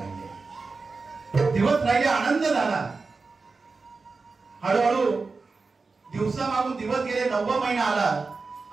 राहिले, आनंद झाला. हळूहळू दिवसामागून दिवस गेले, 9वा महिना आला.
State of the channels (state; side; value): quieter; left; 4.2 dB